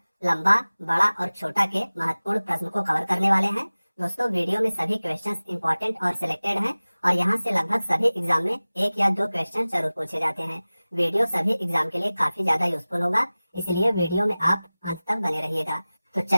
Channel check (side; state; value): both; inverted; correlation -0.98